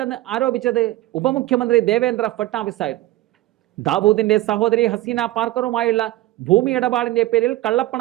ആരോപിച്ചത് ഉപമുഖ്യമന്ത്രി ദേവേന്ദ്ര ഫട്നാവിസ് ആയിരുന്നു. ദാവൂദിന്റെ സഹോദരി ഹസീന പാർക്കറുമായുള്ള ഭൂമി ഇടപാടിന്റെ പേരിൽ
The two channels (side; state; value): left; quieter; 16.4 dB